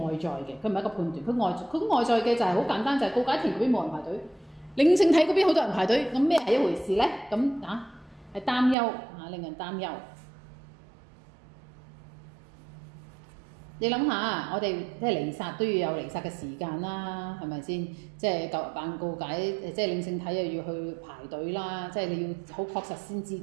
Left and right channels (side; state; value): left; drops out; at 8.8 s